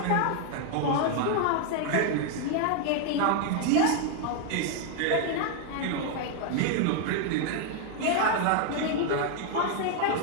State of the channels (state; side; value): different; both; correlation 0.00